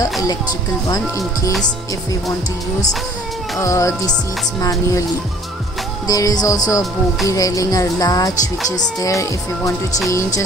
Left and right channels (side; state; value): both; normal; correlation 0.54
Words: electrical one in case if we want to use the seats manually. There is also a bogie railing or latch which is there. If we want to change a